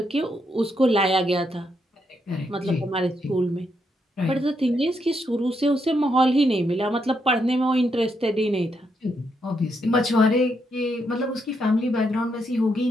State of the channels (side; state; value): both; normal; correlation 0.79